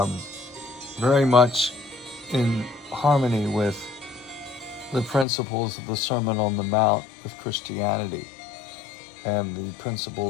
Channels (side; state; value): right; drops out; at 5.2 s